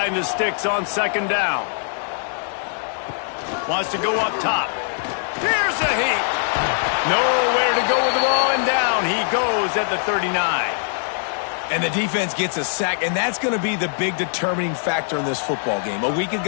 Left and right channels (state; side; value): silent; right; digital silence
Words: the sticks on second down. Wants to go up top. Here's a heat. Nowhere to go with the ball, and down he goes at the 39. And the defense gets a sack, and that's going to be the big determining factor in this football game. A week